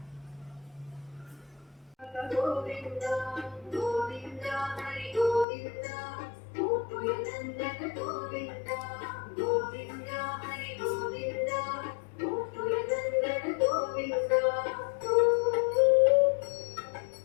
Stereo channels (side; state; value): right; drops out; at 5.5 s